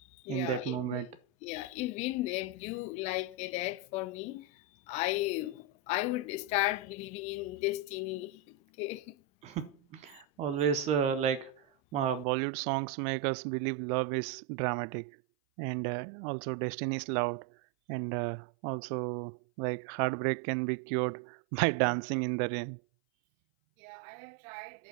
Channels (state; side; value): drops out; left; at 12.2 s